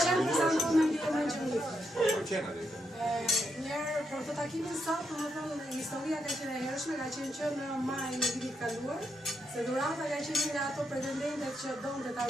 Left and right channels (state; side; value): normal; both; correlation 0.81